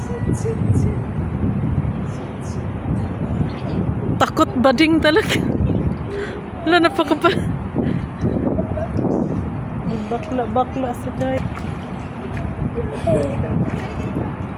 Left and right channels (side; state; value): both; identical; correlation 1.00